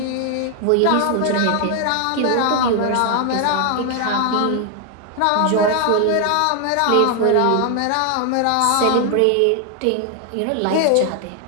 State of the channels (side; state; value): both; different; correlation 0.00